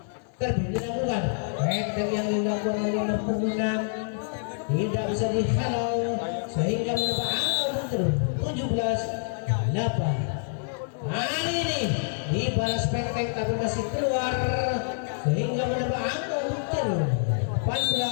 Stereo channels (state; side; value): silent; right; 60 dB below the other